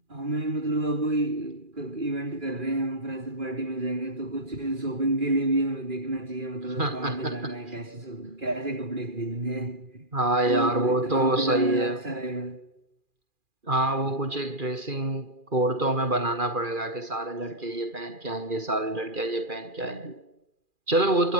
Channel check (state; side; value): late; left; 2.4 ms